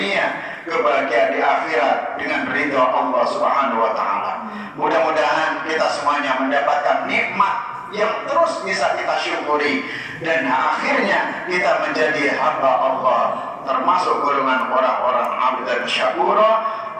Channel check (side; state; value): both; identical; correlation 1.00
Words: kebahagiaan di akhirat dengan ridha Allah Subhanahu wa taala. Mudah-mudahan kita semuanya mendapatkan nikmat yang terus bisa kita syukuri dan akhirnya kita menjadi hamba Allah, termasuk golongan orang-orang abdan syakura,